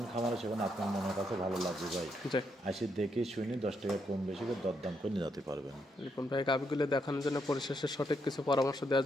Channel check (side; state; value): both; normal; correlation 0.78